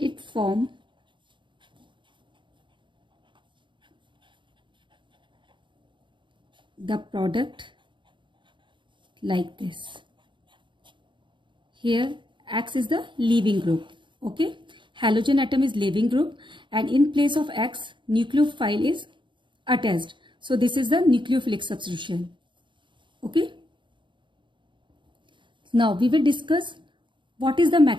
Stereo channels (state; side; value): late; left; 0.23 ms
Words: forms the product like this. Here X is the leaving group. Okay, halogen atom is leaving group and in place of X nucleophile is attached. So this is the nucleophilic substitution. Okay. Now we will discuss what is the